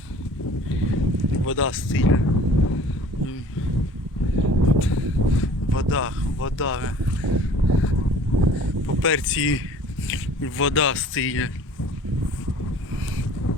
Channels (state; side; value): normal; both; correlation 0.48